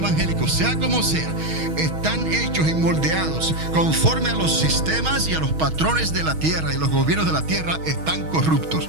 sea como sea, están hechos y moldeados conforme a los sistemas y a los patrones de la tierra, y los gobiernos de la tierra están corruptos,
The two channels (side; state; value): left; late; 6.3 ms